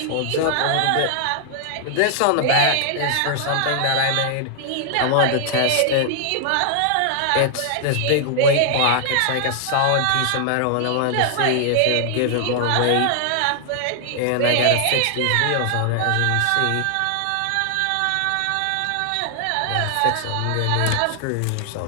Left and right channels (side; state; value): both; different; correlation 0.00